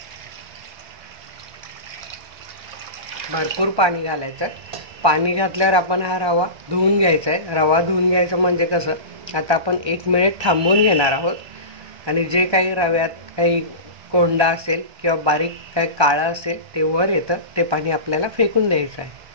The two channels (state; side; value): late; left; 1.2 ms